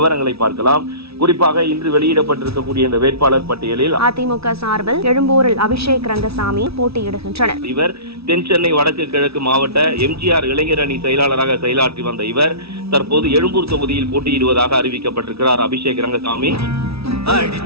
பார்க்கலாம். குறிப்பாக இன்று வெளியிடப்பட்டிருக்கக்கூடிய இந்த வேட்பாளர் பட்டியலில் அதிமுக சார்பில் எழும்பூரில் அபிஷேக் ரங்கசாமி போட்டியிடுகின்றனர். இவர் தென் சென்னை வடக்கு கிழக்கு மாவட்ட எம்ஜிஆர் இளைஞர் அணி செயலாளராக செயலாற்றி வந்த இவர் தற்போது எழும்பூர் தொகுதியில் போட்டியிடுவதாக அறிவிக்கப்பட்டிருக்கிறார். அபிஷேக் ரங்கசாமி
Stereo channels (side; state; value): left; late; 0.77 ms